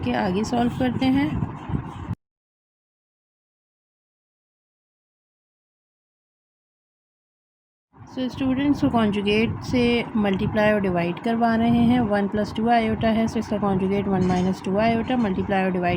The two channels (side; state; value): both; identical; correlation 1.00